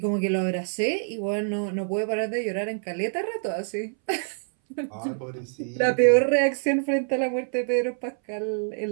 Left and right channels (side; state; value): left; silent; 61 dB below the other